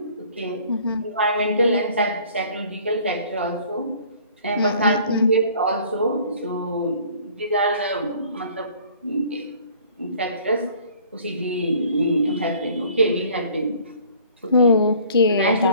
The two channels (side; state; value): both; inverted; correlation -0.53